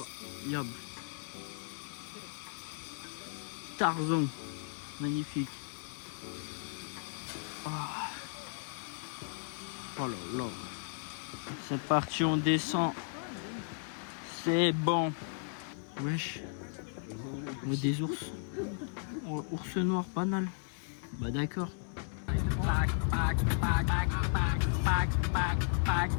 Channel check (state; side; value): silent; right; 54 dB below the other